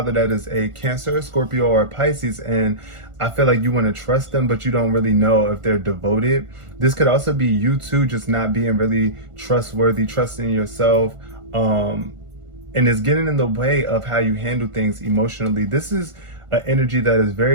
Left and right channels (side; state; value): left; late; 1.5 ms